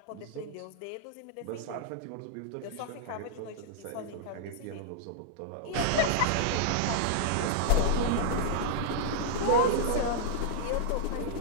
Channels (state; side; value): different; both; correlation -0.01